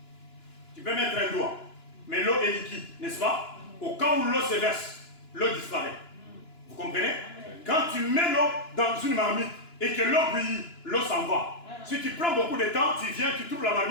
Tu peux mettre un doigt, mais l'eau est liquide, n'est-ce pas? Au cas où l'eau se verse, l'eau disparaît. Vous comprenez? Quand tu mets l'eau dans une marmite et que l'eau bouillit, l'eau s'en va. Si tu prends beaucoup de temps, tu viens, tu trouves la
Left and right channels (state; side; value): late; right; 2.9 ms